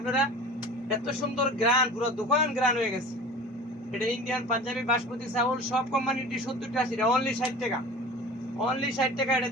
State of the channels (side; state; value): both; normal; correlation 0.39